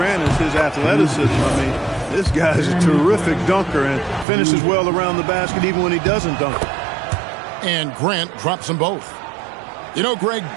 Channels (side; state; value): left; drops out; at 4.2 s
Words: is his athleticism. I mean, this guy's a terrific dunker and finishes well around the basket even when he doesn't dunk. And Grant drops them both. You know, Greg,